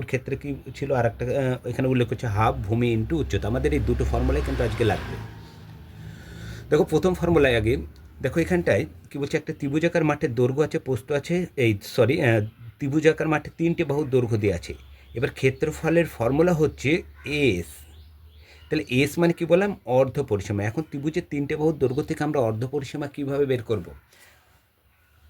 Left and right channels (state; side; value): identical; both; correlation 1.00